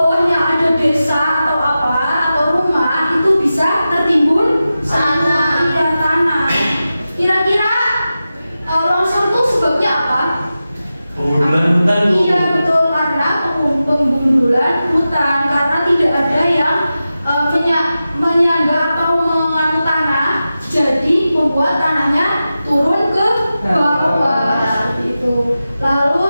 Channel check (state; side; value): inverted; both; correlation -0.93